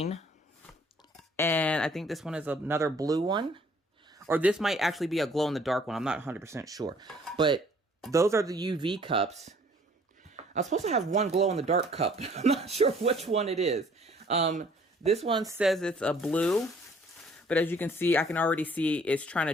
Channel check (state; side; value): normal; both; correlation 0.58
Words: and I think this one is another blue one. Or this might actually be a glow-in-the-dark one. I'm not 100% sure. But those are the UV cups. I was supposed to have one glow-in-the-dark cup. I'm not sure which one it is. This one says it's a blue. But as you can see, I can already see it's trying